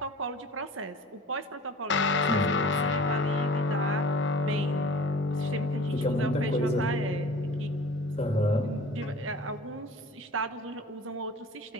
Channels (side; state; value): both; normal; correlation 0.43